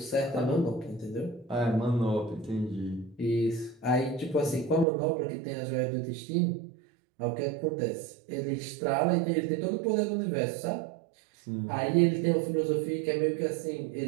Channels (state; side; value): drops out; left; at 4.9 s